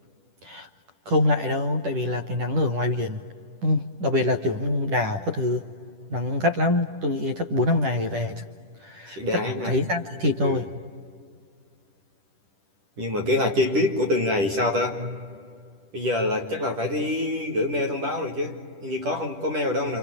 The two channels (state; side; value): late; left; 10 ms